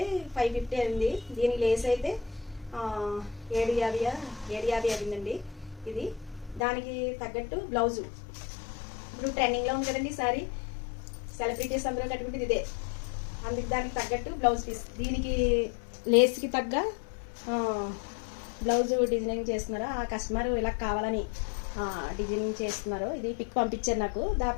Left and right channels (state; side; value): drops out; right; at 6.6 s